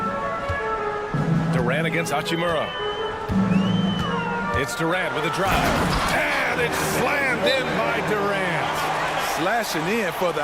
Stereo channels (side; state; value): both; identical; correlation 1.00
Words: Durant against Hachimura. It's Durant with a drive. And it's slammed in by Durant. Slashing in for